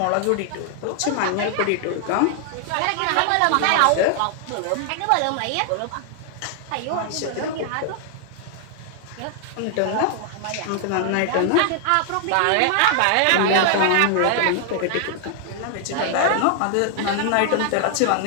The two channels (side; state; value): both; different; correlation 0.00